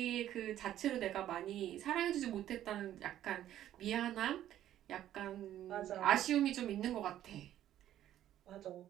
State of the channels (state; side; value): quieter; left; 12.1 dB